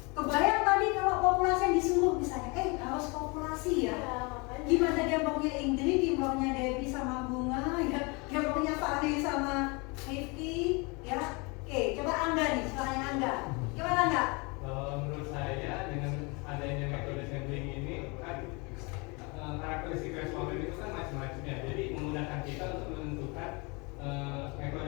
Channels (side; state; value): right; quieter; 28.9 dB